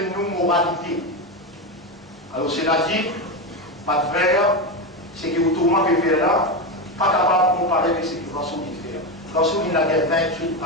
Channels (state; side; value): normal; both; correlation 0.14